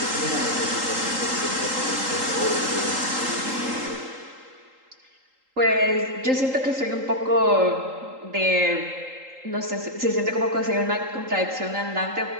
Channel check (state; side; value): late; left; 3.8 ms